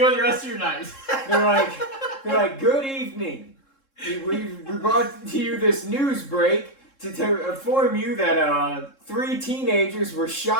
the rest of your night. They're like, good evening. We brought to you this news break to inform you that 3 teenagers were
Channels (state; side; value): late; right; 3.7 ms